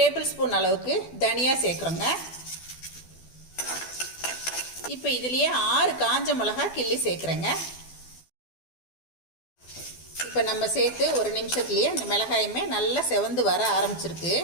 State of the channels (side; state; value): right; late; 12 ms